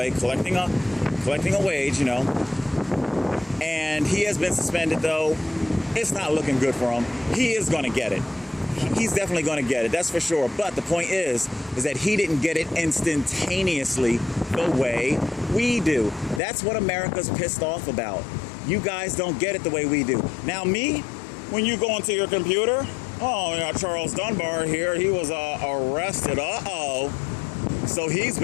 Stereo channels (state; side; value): drops out; right; at 16.4 s